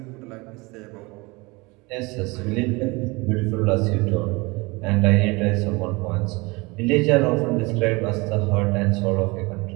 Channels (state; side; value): quieter; left; 25.1 dB